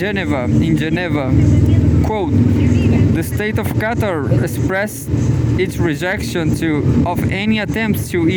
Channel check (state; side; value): identical; both; correlation 1.00